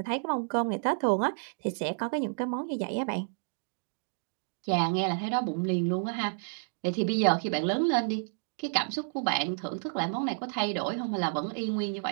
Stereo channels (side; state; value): left; silent; digital silence